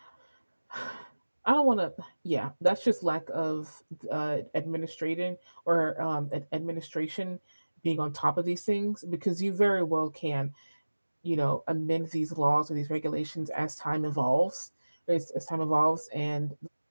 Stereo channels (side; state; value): both; inverted; correlation -1.00